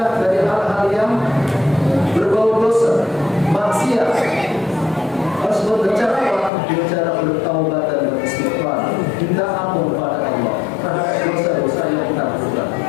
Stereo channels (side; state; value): right; drops out; at 6.5 s